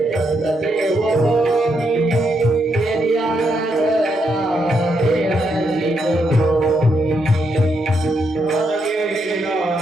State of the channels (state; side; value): normal; both; correlation 0.79